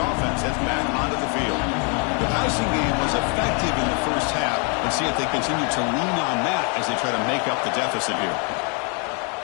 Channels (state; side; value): quieter; right; 36.6 dB